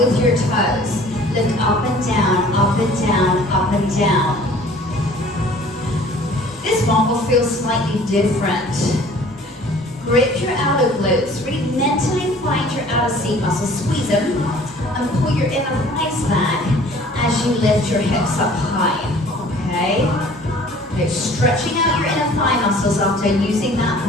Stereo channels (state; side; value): normal; both; correlation 0.51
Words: your toes. Lift up and down, up and down, up and down. This one will feel slightly different. Grip your outer glutes. Really mentally find your outer seat muscles. Squeeze them and pull your inner thighs back as you lift your hips up high. Okay? Okay, stretching out your inner thigh muscles after using that